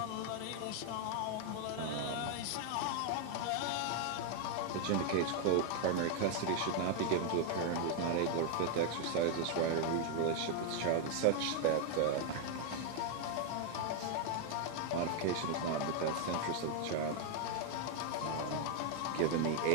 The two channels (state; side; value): different; both; correlation 0.01